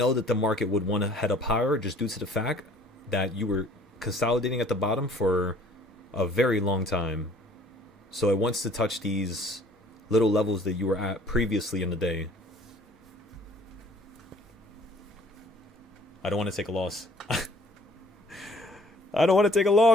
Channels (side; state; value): both; normal; correlation 0.55